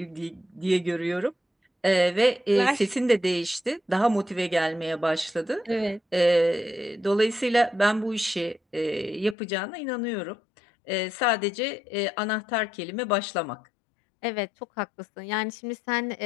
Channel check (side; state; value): right; drops out; at 9.3 s